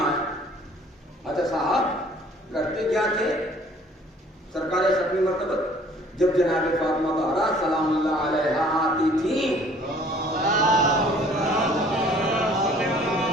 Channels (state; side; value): normal; both; correlation 0.55